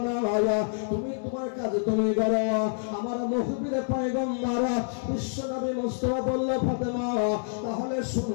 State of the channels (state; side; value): silent; right; 60 dB below the other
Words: না, তুমি তোমার কাজ তুমি করো। আমার মুখবির পয়গম্বর বিশ্ব নবী মুস্তাফা বলল, ফাতেমা তাহলে